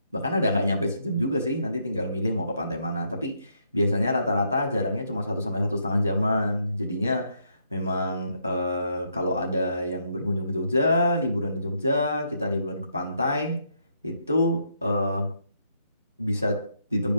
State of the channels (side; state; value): both; inverted; correlation -0.75